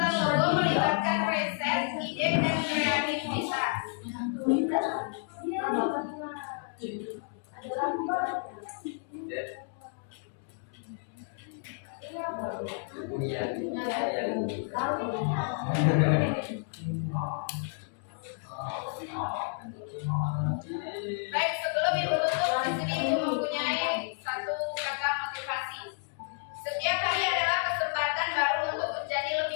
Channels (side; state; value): right; silent; 57 dB below the other